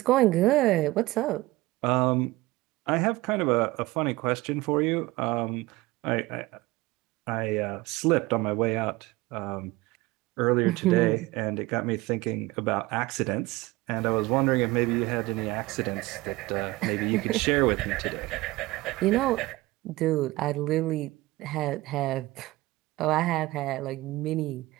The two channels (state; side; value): quieter; left; 19.9 dB